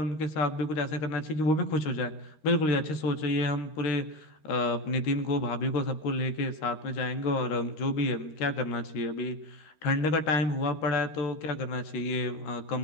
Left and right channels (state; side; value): late; right; 13 ms